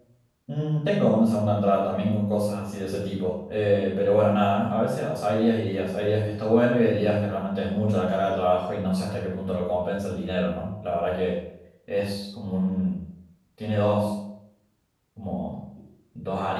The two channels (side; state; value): both; identical; correlation 1.00